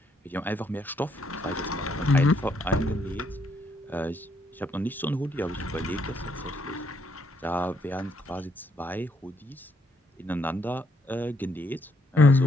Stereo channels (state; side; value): normal; both; correlation 0.72